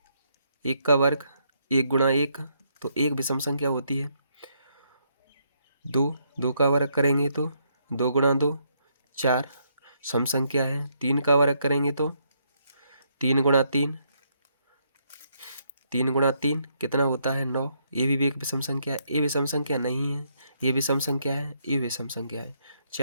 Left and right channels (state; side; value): inverted; both; correlation -0.74